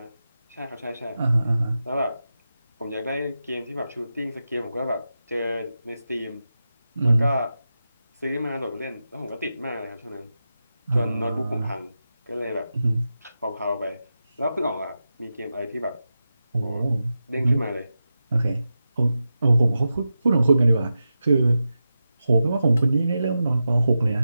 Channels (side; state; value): both; inverted; correlation -0.91